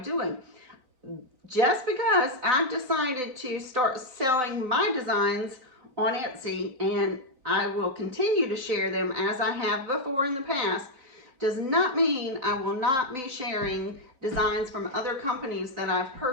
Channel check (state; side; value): late; left; 4.0 ms